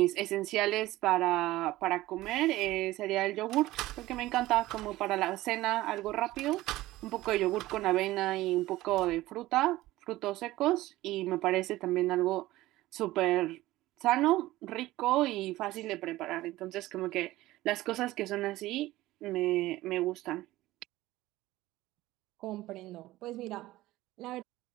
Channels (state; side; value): quieter; left; 17.0 dB